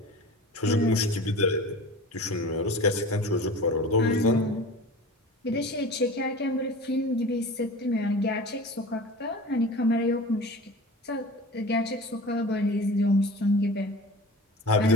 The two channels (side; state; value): both; normal; correlation 0.36